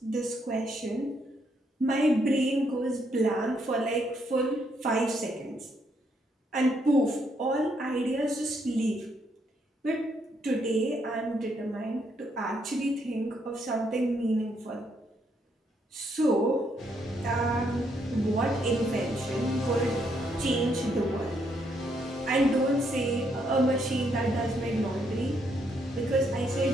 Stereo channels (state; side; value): normal; both; correlation 0.74